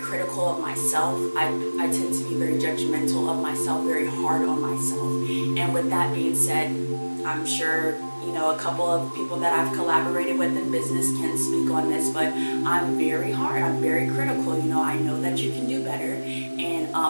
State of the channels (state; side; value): inverted; both; correlation -1.00